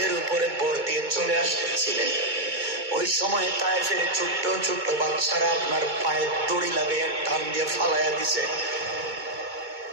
উপরে ভর দিয়ে চলে আসতেছিলেন, ওই সময় তায়েফের ছোট্ট ছোট্ট বাচ্চারা আপনার পায়ে দড়ি লাগিয়ে টান দিয়ে ফালাইয়া দিছে।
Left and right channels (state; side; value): late; left; 2.2 ms